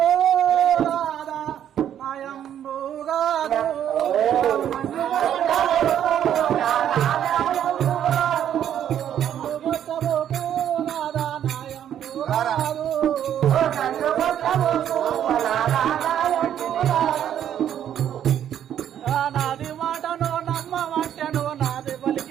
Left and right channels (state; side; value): quieter; left; 10.1 dB